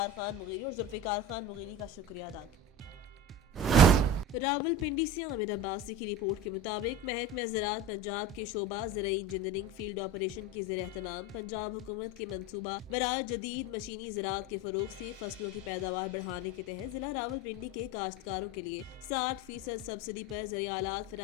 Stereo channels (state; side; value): normal; both; correlation 0.29